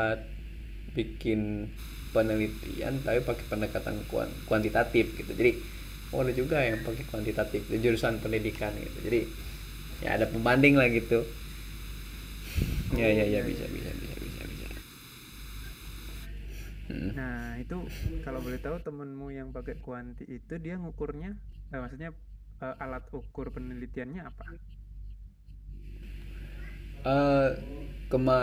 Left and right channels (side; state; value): both; identical; correlation 1.00